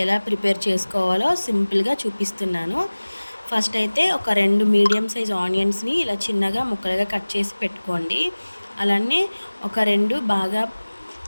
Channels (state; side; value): inverted; both; correlation -1.00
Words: ఎలా ప్రిపేర్ చేసుకోవాలో సింపుల్‌గా చూపిస్తున్నాను. ఫస్ట్ అయితే ఒక 2 మీడియం సైజ్ ఆనియన్స్‌ని ఇలా చిన్నగా ముక్కలుగా కట్ చేసి పెట్టుకోండి. అలానే ఒక 2 బాగా